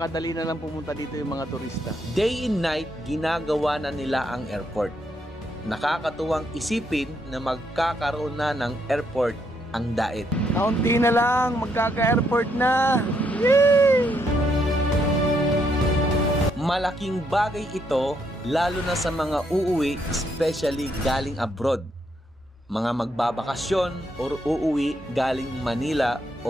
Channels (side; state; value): both; normal; correlation 0.75